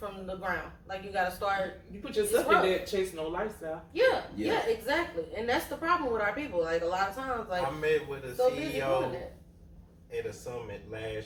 the ground. Like you got to start. You put yourself in there chasing no lifestyle. Yeah, exactly. And that's the problem with our people. Like a lot of times, like I met with a so busy doing CEO that. at a summit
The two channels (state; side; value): identical; both; correlation 1.00